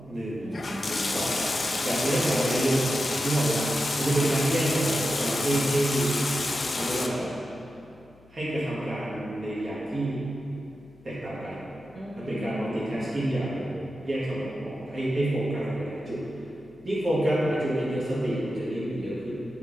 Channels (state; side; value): noise; left; hum, 27 dB below the sound